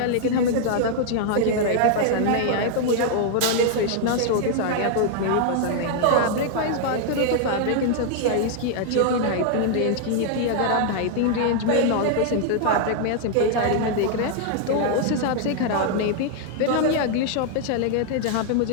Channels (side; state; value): both; different; correlation -0.01